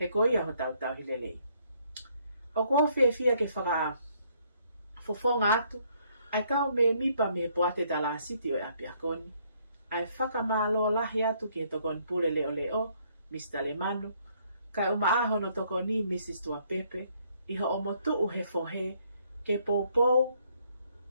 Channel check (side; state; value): both; inverted; correlation -0.68